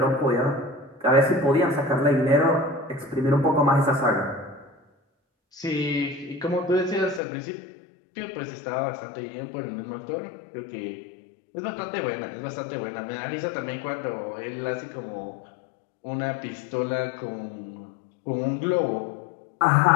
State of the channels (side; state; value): right; drops out; at 7.2 s